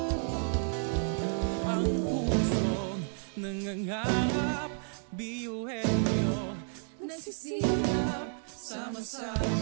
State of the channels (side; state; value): left; silent; 57 dB below the other